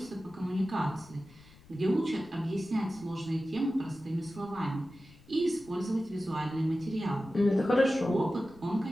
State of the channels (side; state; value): left; noise; rumble, 24 dB below the sound